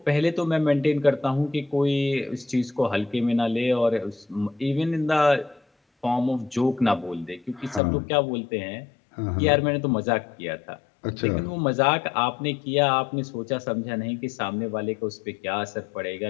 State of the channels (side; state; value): right; drops out; at 7.8 s